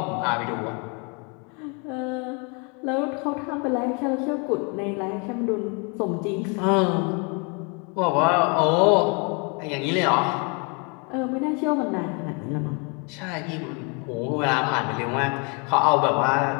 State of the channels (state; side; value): quieter; right; 33.7 dB